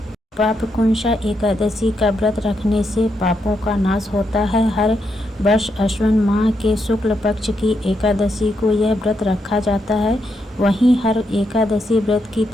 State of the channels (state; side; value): normal; both; correlation 0.81